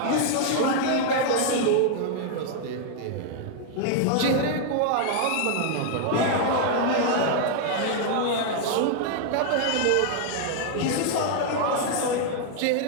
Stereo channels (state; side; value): different; both; correlation 0.00